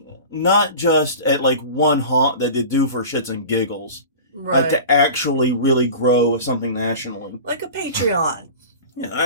not just at, like, one haunt that they do for shits and giggles. Right. To actually really grow something nationally. Like a Patreon.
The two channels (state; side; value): inverted; both; correlation -0.36